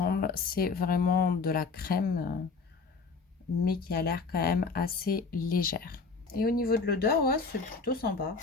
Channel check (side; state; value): right; quieter; 4.5 dB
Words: C'est vraiment de la crème, mais qui a l'air quand même assez légère. Et au niveau de l'odeur, ouais, c'est plutôt sympa.